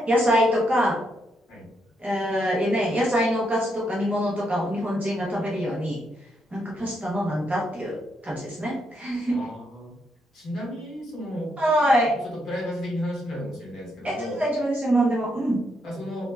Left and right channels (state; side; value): normal; both; correlation 0.78